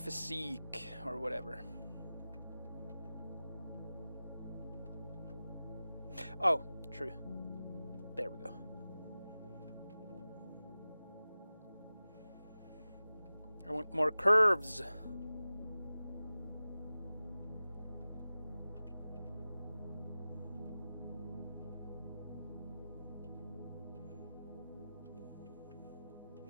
or whatever. Oh, true. There we go. I want more curves.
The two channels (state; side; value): inverted; both; correlation -0.95